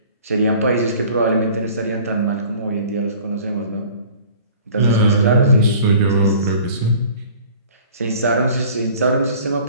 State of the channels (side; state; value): both; inverted; correlation -0.48